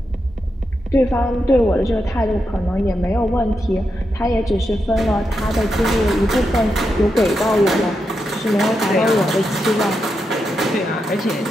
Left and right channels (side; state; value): both; normal; correlation 0.85